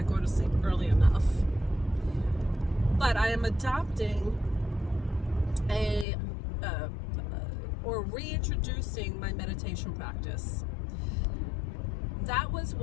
go to sleep early enough. But I am adopting or reintroducing my meditation practice. That was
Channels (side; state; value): right; drops out; at 6.1 s